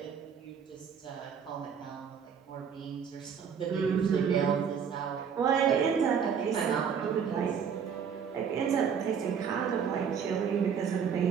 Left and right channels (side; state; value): left; quieter; 7.1 dB